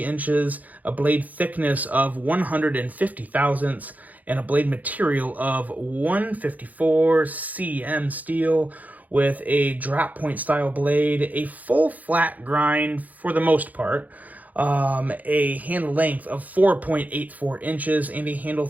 a blade thickness of 150 thousandths, and a blade material of 154 cm steel with a drop point style blade, a full flat grind for the most part, a handle length of 4.84 inches and a handle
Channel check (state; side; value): late; left; 0.079 ms